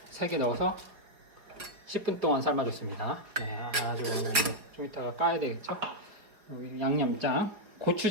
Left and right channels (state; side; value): late; left; 4.7 ms